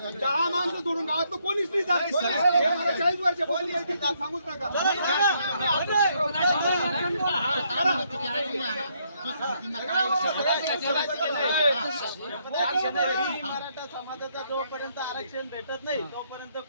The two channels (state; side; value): inverted; both; correlation -0.72